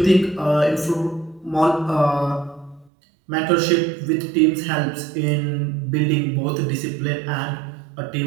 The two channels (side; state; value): left; drops out; at 2.9 s